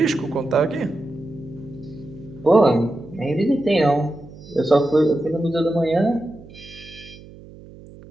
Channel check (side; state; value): right; noise; hum, 19 dB below the sound